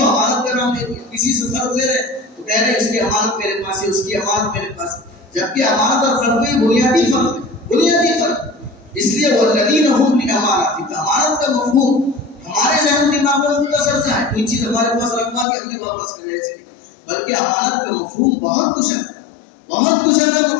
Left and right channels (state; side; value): drops out; right; at 15.5 s